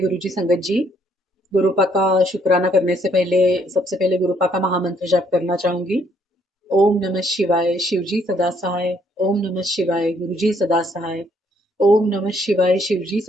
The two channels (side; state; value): both; normal; correlation 0.68